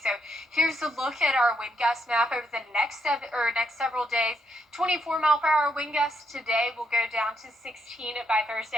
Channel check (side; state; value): both; normal; correlation 0.77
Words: So here's a look at our wind gust map over the next several days. 24 mile per hour wind gusts today will go down to 16 by